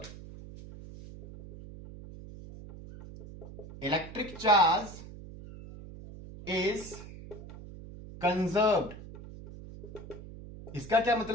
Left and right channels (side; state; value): right; noise; hum, 14 dB below the sound